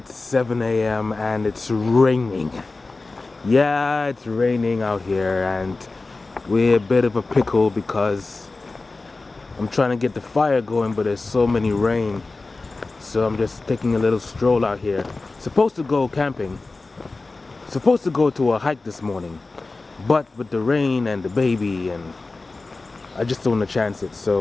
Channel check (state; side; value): quieter; right; 3.5 dB